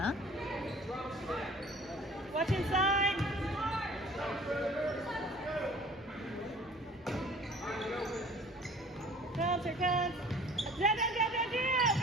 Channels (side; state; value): both; normal; correlation 0.49